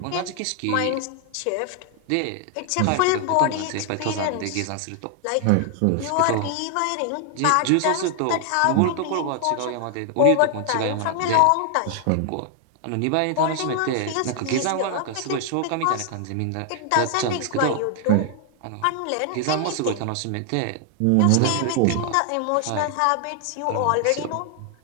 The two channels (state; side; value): different; both; correlation 0.00